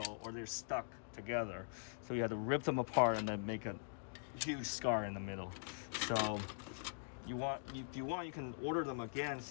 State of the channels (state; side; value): silent; right; digital silence